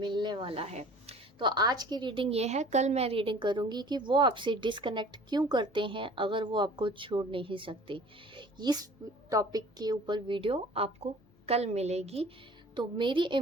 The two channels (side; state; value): both; normal; correlation 0.47